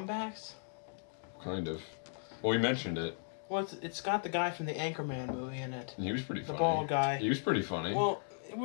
Kind of. Well, we mentioned it. Well, it's got the guy from the Anchorman movie in it. And he was pretty funny. The bald guy. He was pretty funny. Well, it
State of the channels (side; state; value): right; silent; digital silence